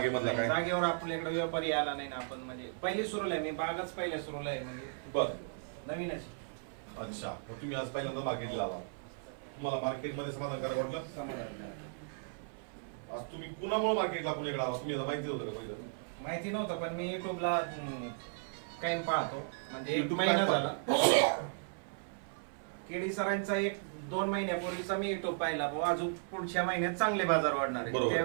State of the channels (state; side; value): silent; left; 54 dB below the other